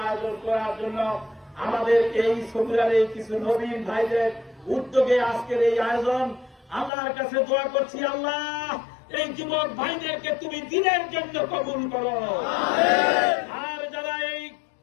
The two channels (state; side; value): drops out; right; at 6.9 s